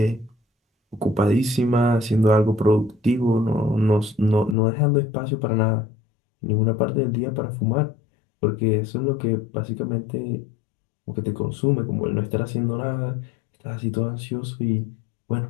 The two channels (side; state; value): right; drops out; at 4.5 s